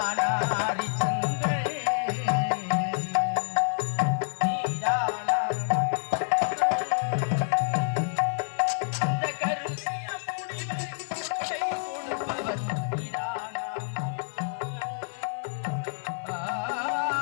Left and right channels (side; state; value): right; silent; digital silence